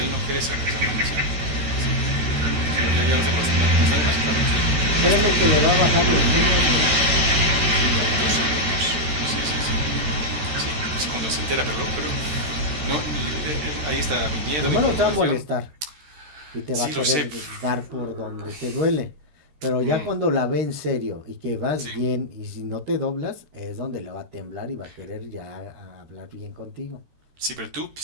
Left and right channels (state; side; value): late; left; 13 ms